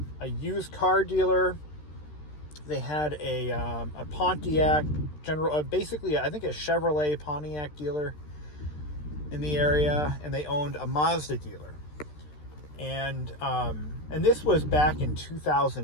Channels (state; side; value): late; right; 13 ms